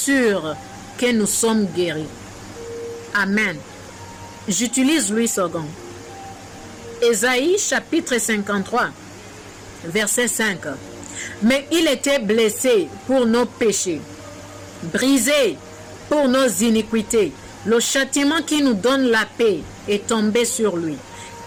que nous sommes guéris. Amen. J'utilise Louis II. Ésaïe chapitre 53, verset 5. Mais il était blessé pour nos péchés, brisé pour nos iniquités. Le châtiment qui nous donne la paix est tombé sur lui.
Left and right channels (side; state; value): both; identical; correlation 1.00